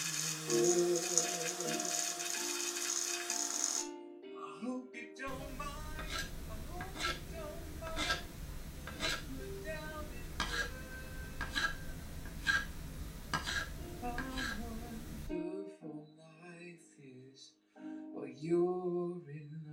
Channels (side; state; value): both; identical; correlation 1.00